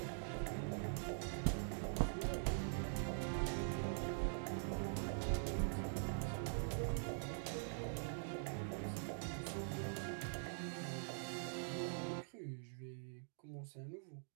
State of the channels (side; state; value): left; silent; digital silence